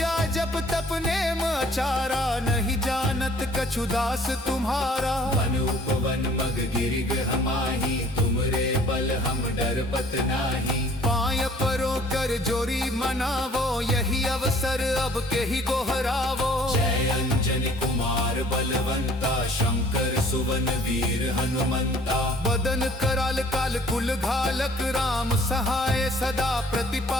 जप तप नेम आचारा, नहीं जानत कछु दास तुम्हारा। वन उपवन मग गिरि गृह माही, तुमरे बल हम डरपत नाही। पाय परो कर जोरी मनावो, यही अवसर अब के ही गोहरावो। जय अंजनी कुमार बलवंता, शंकर सुवन वीर हनुमंता। बदन कराल काल कुल घालक, राम सहाय सदा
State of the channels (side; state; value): both; normal; correlation 0.55